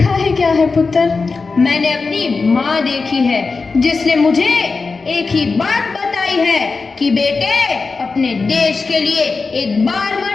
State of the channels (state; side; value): quieter; right; 4.3 dB